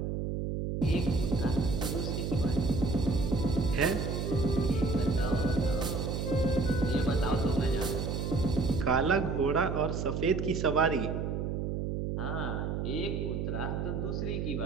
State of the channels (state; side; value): noise; right; hum, 2 dB below the sound